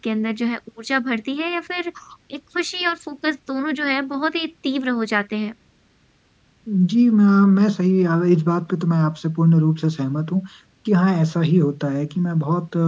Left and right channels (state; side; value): identical; both; correlation 1.00